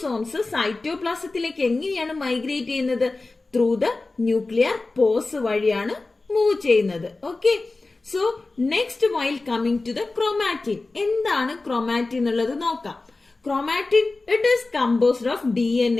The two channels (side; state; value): right; quieter; 3.4 dB